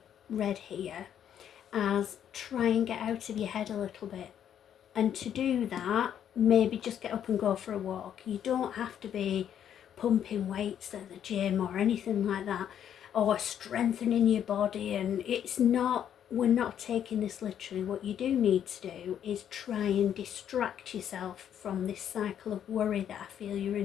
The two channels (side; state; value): right; quieter; 9.5 dB